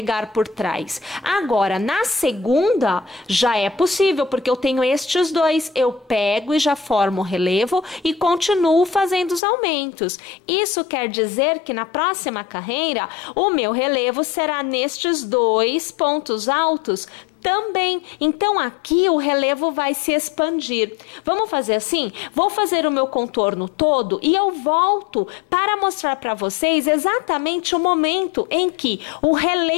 por trás. Agora, na segunda, já é possível, porque eu tenho estes dois, eu pego e já formo o relevo e continuo fazendo os aumentos. Isso quer dizer que na próxima carreira, o meu relevo será nestes 2 pontos altos também. Então, aqui o relevo vai se expandir. Vamos fazer assim? Vou fazer o meu contorno todo e eu volto para mostrar para vocês exatamente o momento em que o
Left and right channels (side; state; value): right; drops out; at 9.4 s